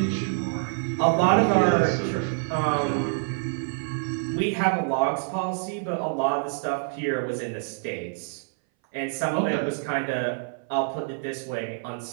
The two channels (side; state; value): left; silent; 59 dB below the other